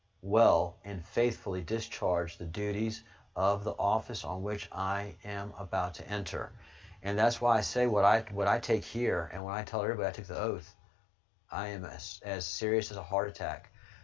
well and faithfully discharge the duties of the office on which I am about to enter. And that's why I say what I take here, and when I tell everybody I took the oath, I am as serious as a heart attack.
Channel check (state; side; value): drops out; right; at 9.4 s